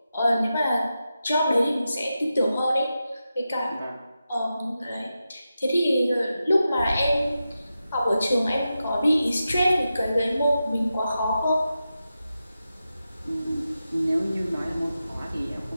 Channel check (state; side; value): inverted; both; correlation -0.90